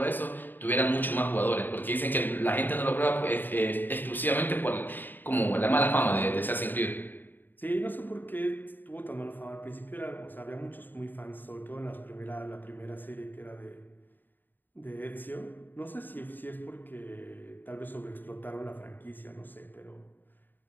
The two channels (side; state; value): right; late; 0.091 ms